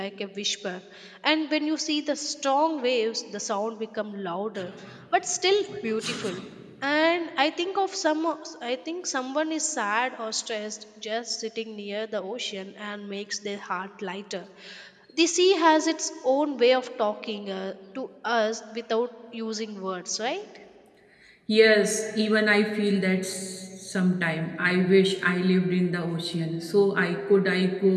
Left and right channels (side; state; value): both; identical; correlation 1.00